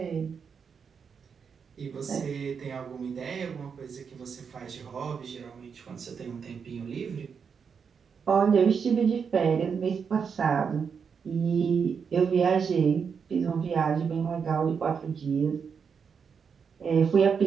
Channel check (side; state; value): left; quieter; 6.3 dB